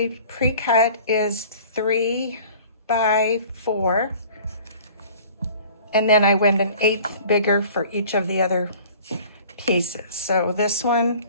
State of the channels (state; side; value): inverted; both; correlation -0.47